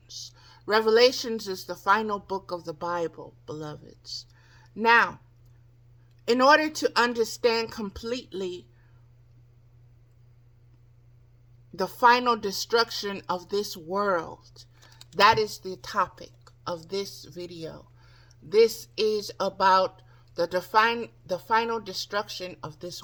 Revelations is the final book of the Bible, beloveds. Now, in order to understand completely the final destruction of this world, that is the topic of this video. This is about the final destruction of this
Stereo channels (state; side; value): identical; both; correlation 1.00